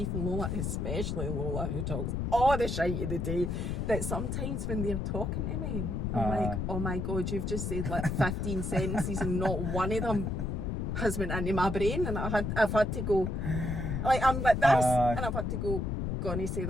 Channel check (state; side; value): noise; left; rumble, 1 dB below the sound